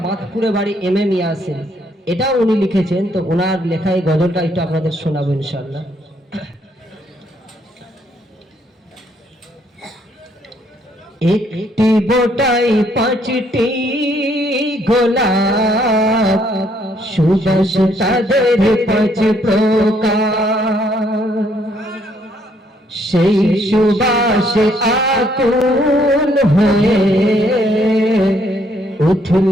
বাঁধপুরে বাড়ি MM ইয়াসিন, এটাও উনি লিখেছেন। তো ওনার লেখা এই গজলটা একটু আপনাদের শোনাবো ইনশাআল্লাহ। একটি বোটাই 5টি গোলাপ, সুবাস তাদের 5 প্রকার। সেই সুবাসে আকুল হয়ে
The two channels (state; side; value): normal; both; correlation 0.69